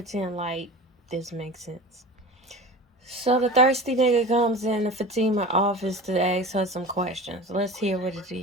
like this makes sense. So the thirsty nigga comes in the Fatima office to ask her some questions. Let's hear what it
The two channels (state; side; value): normal; both; correlation 0.34